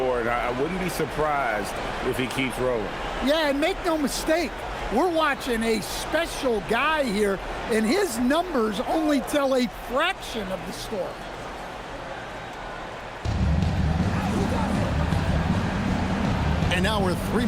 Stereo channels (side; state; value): both; identical; correlation 1.00